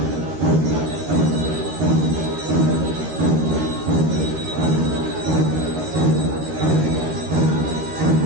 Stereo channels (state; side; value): late; left; 13 ms